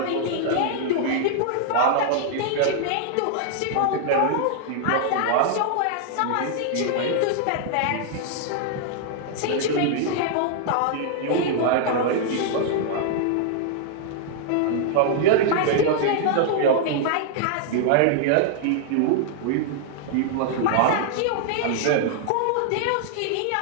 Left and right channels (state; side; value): different; both; correlation -0.01